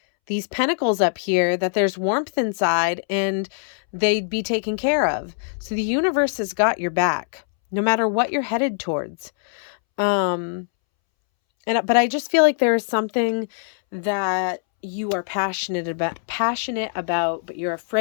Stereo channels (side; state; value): right; silent; 64 dB below the other